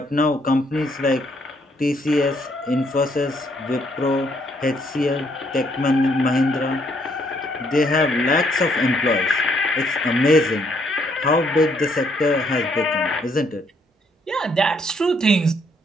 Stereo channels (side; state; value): both; normal; correlation 0.70